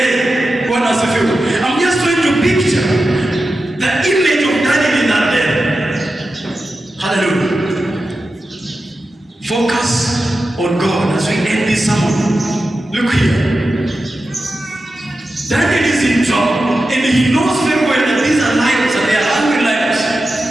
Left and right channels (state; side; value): normal; both; correlation 0.92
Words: Bwana asifiwe. I'm just trying to picture the image of Daniel in that day. Hallelujah. Focus on God as we end this sermon. Look here. Daniel is in trouble, and he knows very well that these are lions and they are hungry lions.